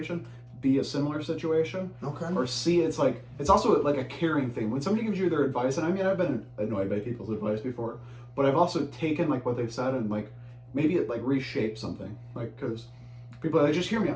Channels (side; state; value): both; identical; correlation 1.00